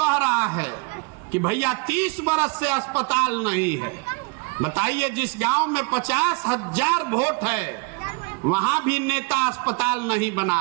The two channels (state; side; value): quieter; left; 30.8 dB